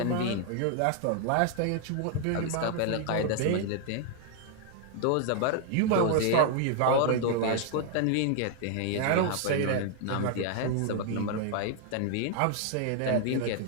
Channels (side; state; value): both; different; correlation 0.00